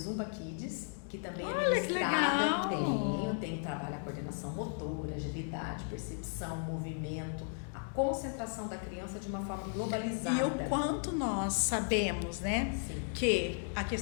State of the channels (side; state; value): right; silent; 54 dB below the other